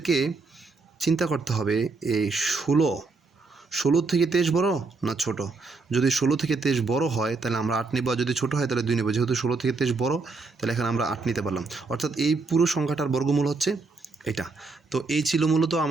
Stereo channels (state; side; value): quieter; left; 3.9 dB